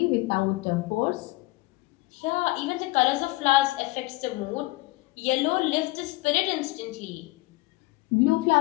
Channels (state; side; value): quieter; right; 21.5 dB